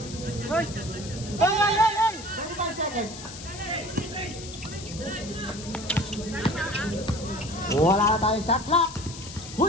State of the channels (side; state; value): left; noise; hiss, 13 dB below the sound